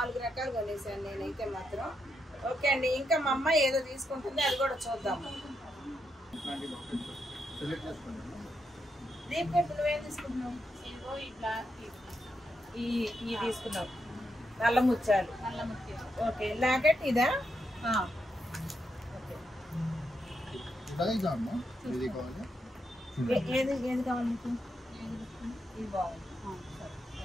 రకాలు కొనేసాను నేనైతే మాత్రం. ఓకే అండి, ఇంకా మా అమ్మాయి ఏదో తీసుకుంటుంది, అది కూడా చూద్దాము. దీప్ ఇప్పుడు నువ్వేం తీసుకుంటున్నావు? ఈ తీసుకున్నావు, నల్ల ముత్యాలు. ఓకే, లాకెట్ ఇదా? ఏది ఏది కావాలి మీకు? ఇది బాగుంది.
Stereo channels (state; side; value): normal; both; correlation 0.82